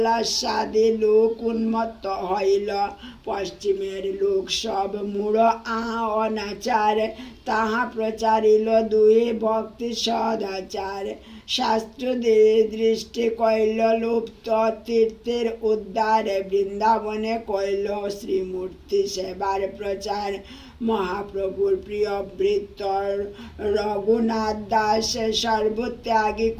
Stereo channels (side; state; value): both; identical; correlation 1.00